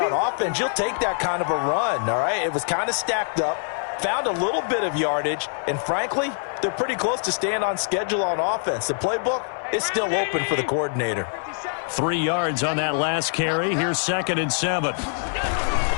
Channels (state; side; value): silent; right; digital silence